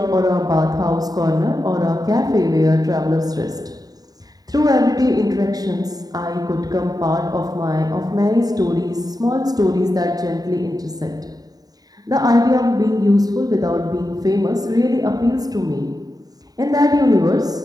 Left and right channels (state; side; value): late; left; 0.18 ms